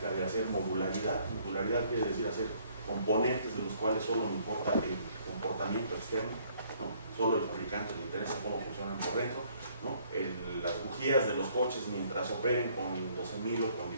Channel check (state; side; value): inverted; both; correlation -0.63